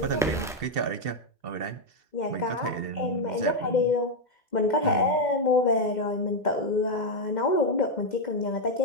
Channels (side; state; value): both; normal; correlation 0.02